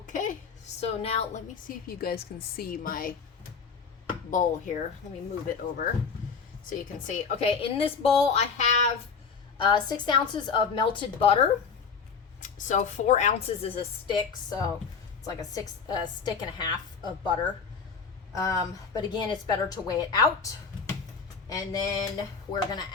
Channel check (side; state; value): right; quieter; 5.7 dB